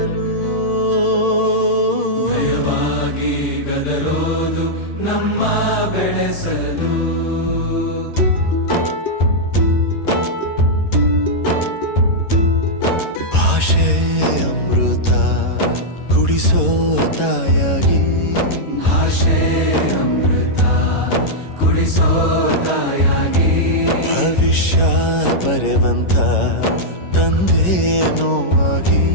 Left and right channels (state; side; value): late; right; 11 ms